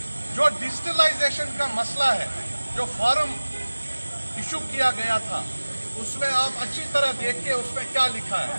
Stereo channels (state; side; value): inverted; both; correlation -1.00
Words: जो डिजिटलाइजेशन का मसला है, जो फॉर्म इशू किया गया था, उसमें आप अच्छी तरह देखिए उसमें क्या लिखा